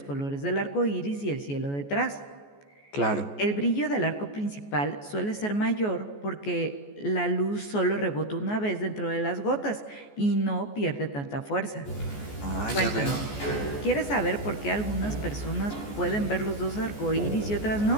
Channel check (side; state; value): right; late; 14 ms